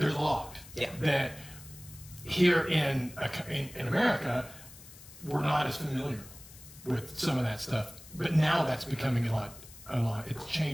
lot that here in America, we're not as familiar with some of that stuff. But now that's becoming a lot. It's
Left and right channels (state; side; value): noise; left; hiss, 19 dB below the sound